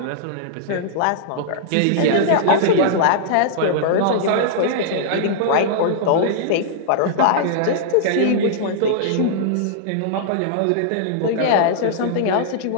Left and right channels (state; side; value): different; both; correlation -0.02